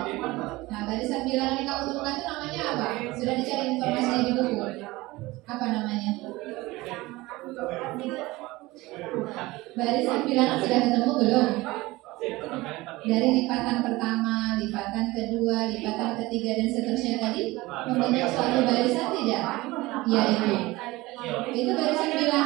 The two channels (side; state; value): left; quieter; 20.4 dB